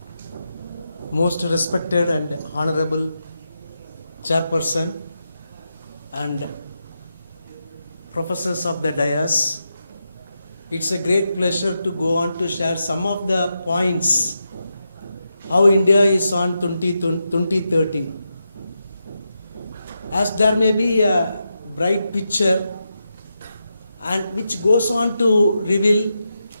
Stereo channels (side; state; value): both; inverted; correlation -0.87